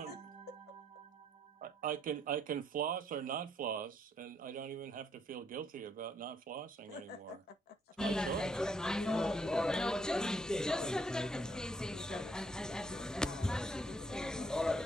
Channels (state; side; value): normal; both; correlation 0.71